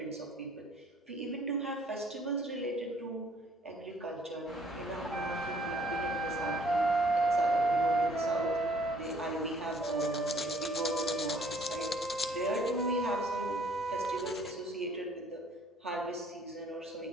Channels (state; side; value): normal; both; correlation 0.59